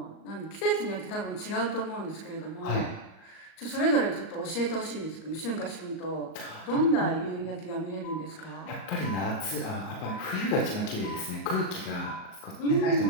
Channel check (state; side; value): late; right; 38 ms